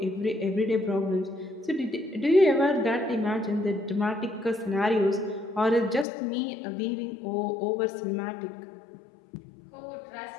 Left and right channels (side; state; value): right; drops out; at 6.1 s